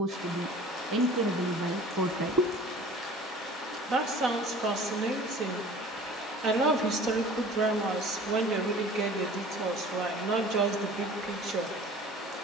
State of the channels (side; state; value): both; normal; correlation 0.45